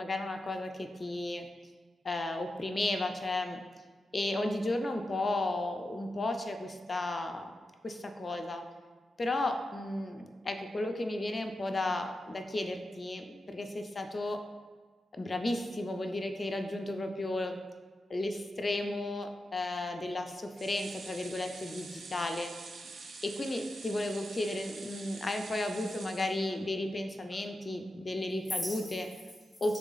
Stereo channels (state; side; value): normal; both; correlation 0.90